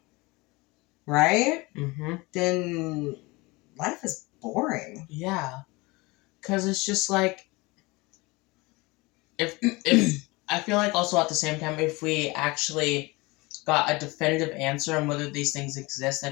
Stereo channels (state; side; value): quieter; right; 23.9 dB